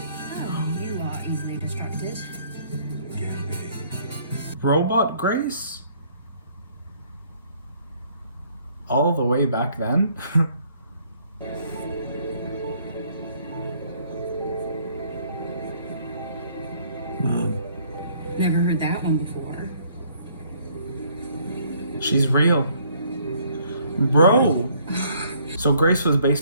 Oh, you are easily distracted. Can be. Robot Grace? All the way back then? Mom. Never heard that one before. She's real. Bro! So Grace was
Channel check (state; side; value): inverted; both; correlation -0.63